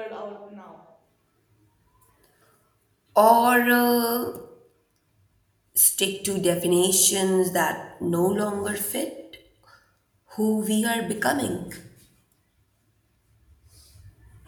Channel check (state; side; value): identical; both; correlation 1.00